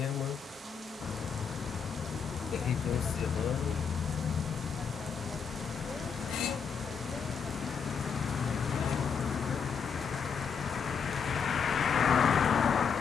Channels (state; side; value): quieter; right; 6.4 dB